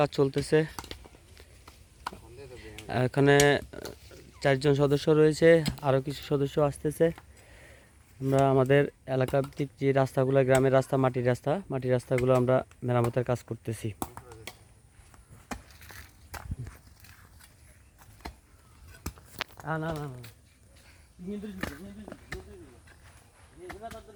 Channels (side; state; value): both; identical; correlation 1.00